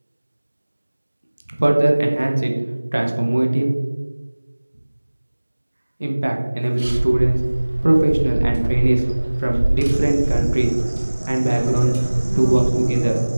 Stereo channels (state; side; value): inverted; both; correlation -1.00